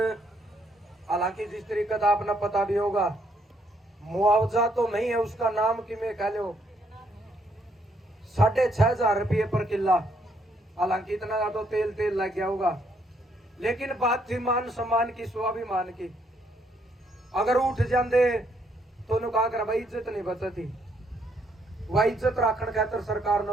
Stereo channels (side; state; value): both; normal; correlation 0.72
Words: हालांकि जिस तरीके का आपने पता भी होगा, मुआवजा तो नहीं है, उसका नाम कि मैं कह लो 6,500 रुपये पर किला, हालांकि इतना तो तेल तेल लग गया होगा, लेकिन बात थी मान सम्मान की, स्वाभिमान की। अगर उठ जाते तो कहा कर भाई इज्जत नहीं बचती, वह इज्जत राखण खातर सरकार